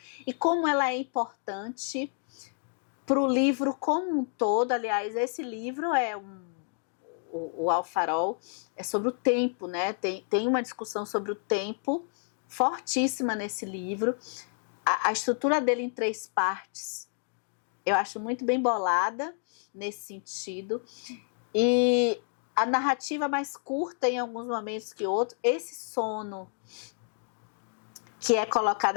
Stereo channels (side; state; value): right; silent; 56 dB below the other